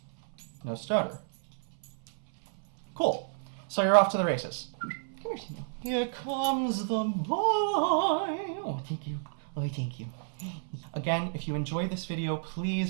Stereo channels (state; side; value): silent; left; 57 dB below the other